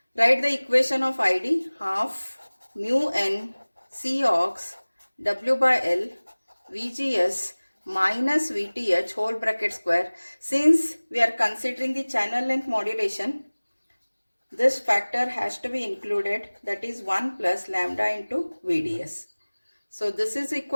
Write the equation of ID, half mu n Cox W by L VGS minus VTH whole bracket square. Since we are considering the channel length modulation, this factor has to be included, that is 1 plus lambda into VDS. So this is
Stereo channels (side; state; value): both; inverted; correlation -1.00